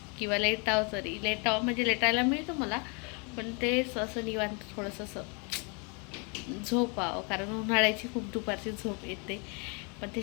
किंवा लेटावं. तरी लेटावं म्हणजे लेटायला मिळतं मला, पण ते असं निवांत थोडंसं असं झोपावं, कारण उन्हाळ्याची खूप दुपारची झोप येते. पण ते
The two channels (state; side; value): quieter; right; 34.2 dB